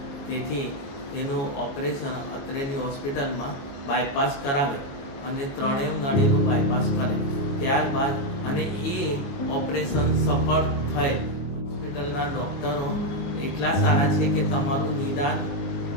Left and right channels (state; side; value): late; right; 22 ms